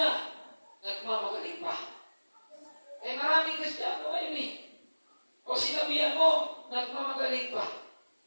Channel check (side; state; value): both; inverted; correlation -1.00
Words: nagmamagaling pa. Maraming Kristiyano ngayon O sinabihan mo, nagmamagaling pa.